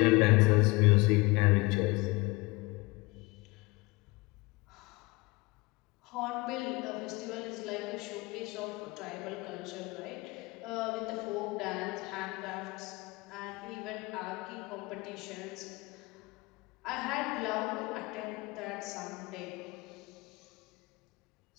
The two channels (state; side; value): quieter; right; 23.9 dB